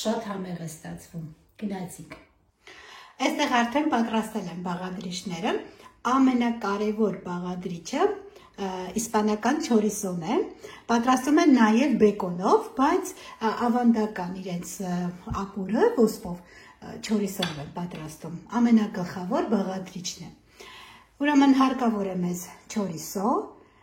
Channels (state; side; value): identical; both; correlation 1.00